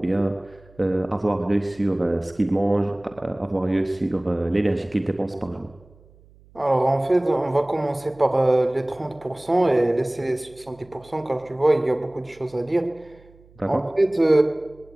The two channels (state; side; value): noise; right; hum, 27 dB below the sound